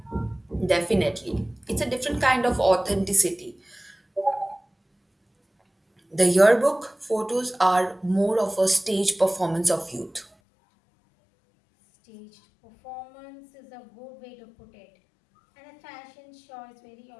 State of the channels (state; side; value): drops out; right; at 10.3 s